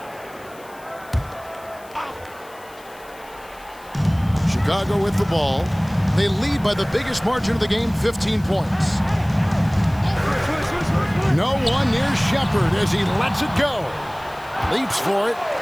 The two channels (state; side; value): noise; left; hiss, 24 dB below the sound